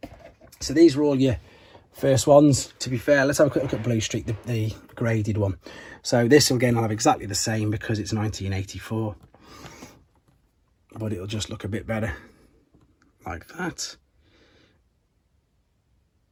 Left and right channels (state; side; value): identical; both; correlation 1.00